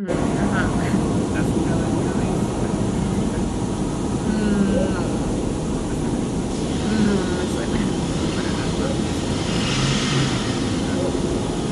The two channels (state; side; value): identical; both; correlation 1.00